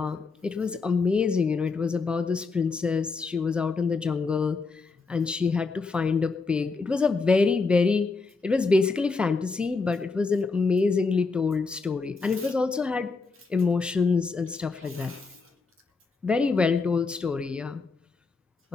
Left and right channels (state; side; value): quieter; right; 4.3 dB